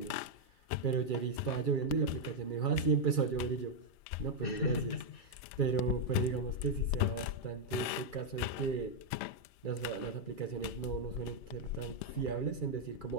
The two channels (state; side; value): late; right; 3.3 ms